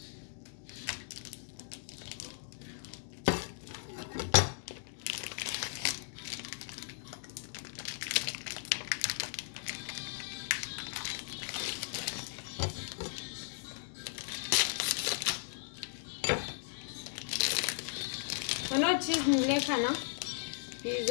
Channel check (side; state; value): right; silent; digital silence